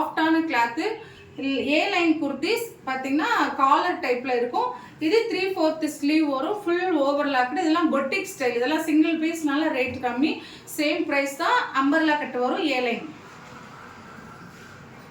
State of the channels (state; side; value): identical; both; correlation 1.00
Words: கிளாத்து. ஏ லைன் குர்த்திஸ் பார்த்தீங்கன்னா காலர் டைப்பில் இருக்கும். இது 3/4 ஸ்லீவ் வரும். Full overlocked. இதெல்லாம் பொட்டிக் ஸ்டைல். இதெல்லாம் சிங்கிள் பீஸ்னால ரேட் கம்மி. சேம் ப்ரைஸ் தான். அம்பர்லா கட்டு வரும். A line.